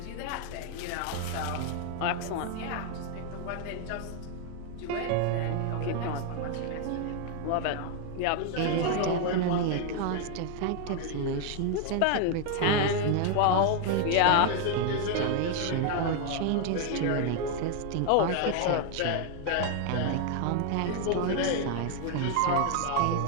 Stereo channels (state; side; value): different; both; correlation 0.00